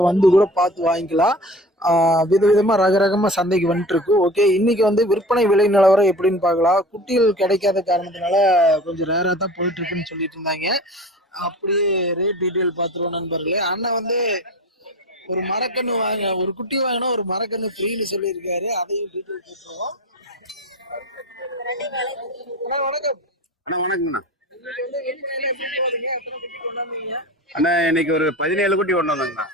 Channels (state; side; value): normal; both; correlation 0.36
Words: வந்து கூட பார்த்து வாங்கிக்கலாம். விதவிதமா ரகரகமா சந்தைக்கு வந்துட்டு இருக்கு. ஓகே, இன்னைக்கு வந்து விற்பனை விலை நிலவரம் எப்படின்னு பார்க்கலாம். குட்டிகள் கிடைக்காத காரணத்தினால கொஞ்சம் ரேரா தான் போயிட்டு இருக்குன்னு சொல்லிட்டு இருந்தாங்க. அப்படியே ரேட் டீட்டெயில் பார்த்துருவோம் நண்பர்களே. அண்ணன் வந்து ஒரு மரக்கன்று ஒரு குட்டி வாங்கினா ஒரு மரக்கன்று ஃப்ரீன்னு சொல்லியிருக்காரு. அதையும் டீட்டெயில் பேசுவோம். வணக்கம் அண்ணா. வணக்கம்ண்ணா. அண்ணா இன்னைக்கு ஒரு 17 குட்டி கொண்டு வந்தாங்கண்ணா.